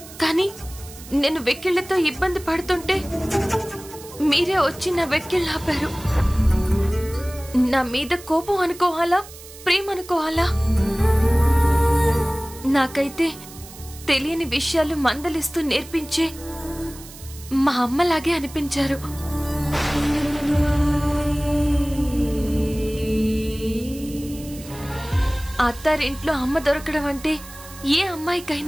కానీ నేను వెక్కిళ్లతో ఇబ్బంది పడుతుంటే మీరే వచ్చి నా వెక్కిళ్ళు ఆపారు. నా మీద కోపం అనుకోవాలా, ప్రేమ అనుకోవాలా? నాకైతే తెలియని విషయాలు మందలిస్తూ నేర్పించే మా అమ్మలాగే అనిపించారు. అత్తారింట్లో అమ్మ దొరకడం అంటే ఏ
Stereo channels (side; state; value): right; noise; hiss, 17 dB below the sound